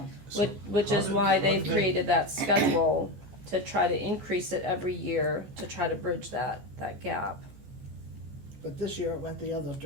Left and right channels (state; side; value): late; left; 14 ms